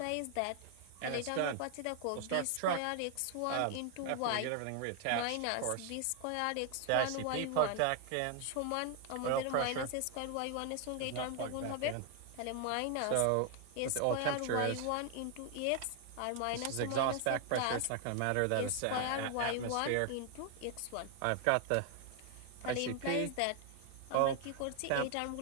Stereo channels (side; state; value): both; different; correlation 0.00